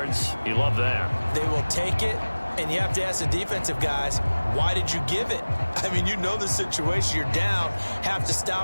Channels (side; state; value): both; inverted; correlation -1.00